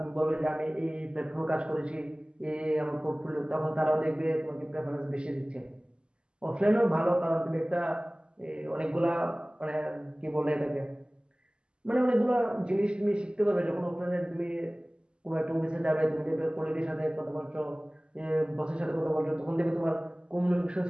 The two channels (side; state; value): left; late; 0.049 ms